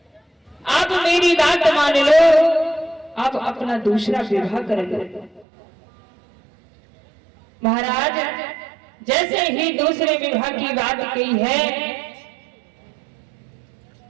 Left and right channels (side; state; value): left; drops out; at 5.5 s